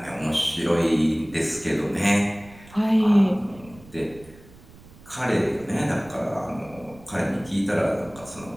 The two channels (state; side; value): noise; right; rumble, 22 dB below the sound